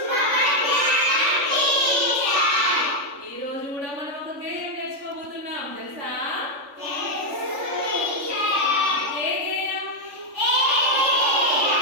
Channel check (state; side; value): late; left; 3.5 ms